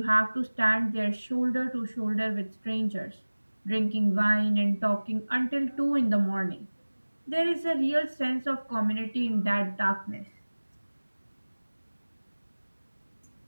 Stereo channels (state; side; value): inverted; both; correlation -1.00